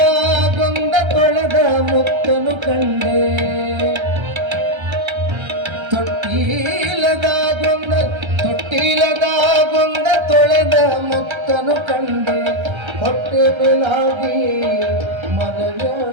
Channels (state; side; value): late; left; 1.3 ms